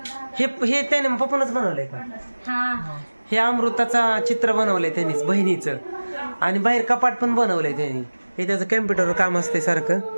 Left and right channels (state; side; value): inverted; both; correlation -1.00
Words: हे त्याने पप्पानच बनवलंय का? हे अमृताचा चित्र बनवलंय त्यांनीच, बहिणीचं. आणि बाहेर कपाट पण बनवलंय त्यांनी. हे त्याचं कॅम्प्युटरवर काम असते